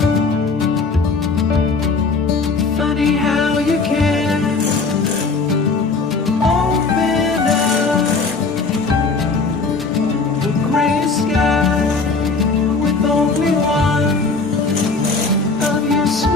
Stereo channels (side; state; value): right; quieter; 4.2 dB